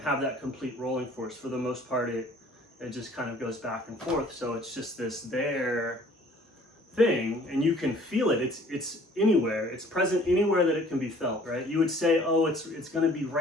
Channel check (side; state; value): both; normal; correlation 0.54